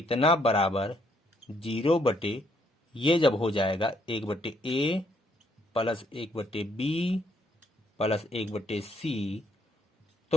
बराबर 0 ये जब हो जाएगा 1/a plus 1/b plus 1/c,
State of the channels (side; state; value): both; normal; correlation 0.70